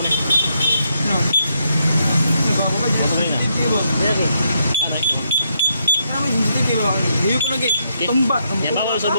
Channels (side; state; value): both; inverted; correlation -0.78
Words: ni. No. Nagawa ba dito? Sensitive ba? Lagi. Ano? Kami sensitive ba? Diyo ko lagi. Tumba. Yan bawal sa